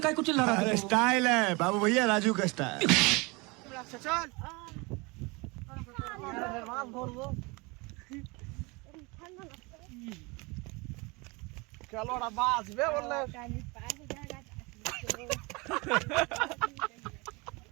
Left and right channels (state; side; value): quieter; left; 26.7 dB